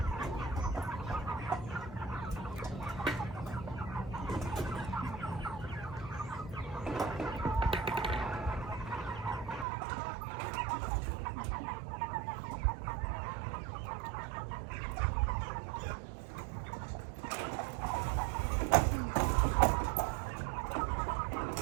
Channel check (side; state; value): left; drops out; at 9.7 s